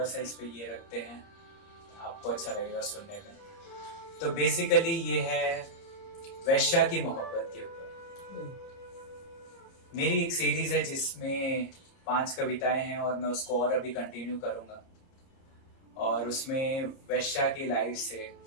सा इस पे ये रखते हैं, आपको अच्छा लगेगा सुनने में। तो बेसिकली ये है वैश्या की मोहब्बत के ऊपर। मेरी एक सीरीज है जिसमें 5 कविताएं हैं और मैं उसको और अभी कंटिन्यू करूंगा। और उसमें वैश्या की लाइफ से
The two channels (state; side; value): late; right; 30 ms